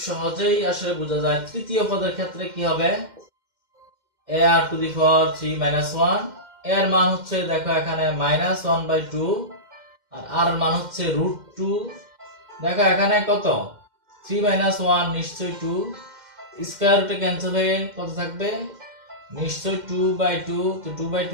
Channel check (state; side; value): late; left; 2.1 ms